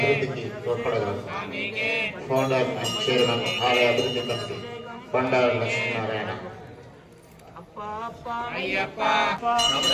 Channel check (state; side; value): identical; both; correlation 1.00